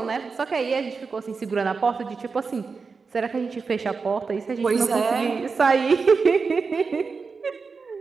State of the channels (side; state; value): left; quieter; 4.8 dB